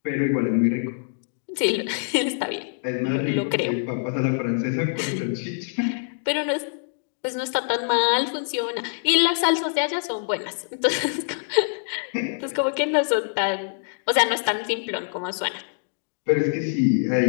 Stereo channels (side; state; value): right; silent; digital silence